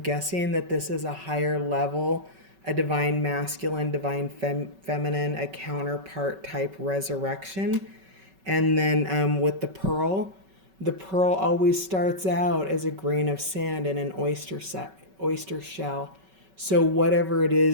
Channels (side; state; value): left; late; 5.3 ms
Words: that this is a higher level, a divine masculine, divine feminine, a counterpart type resurrection. And then with the pearl always starts out as a grain of sand in an oyster shell. So whatever it